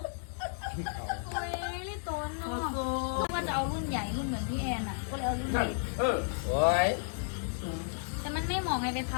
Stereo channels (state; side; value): silent; right; digital silence